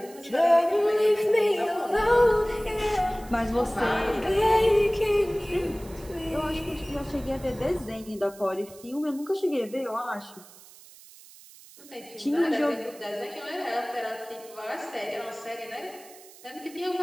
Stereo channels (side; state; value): right; noise; hiss, 21 dB below the sound